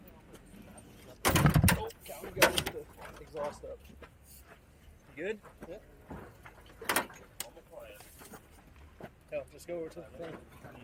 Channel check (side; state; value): both; identical; correlation 1.00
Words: Oh, God, we got the exhaust up. You good? Yep. Hell, just go over to the